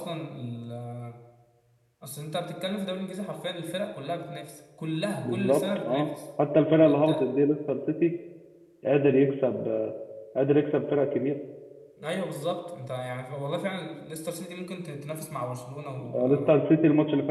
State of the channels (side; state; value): both; identical; correlation 1.00